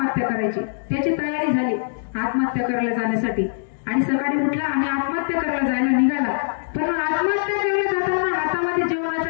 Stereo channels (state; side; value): silent; right; 64 dB below the other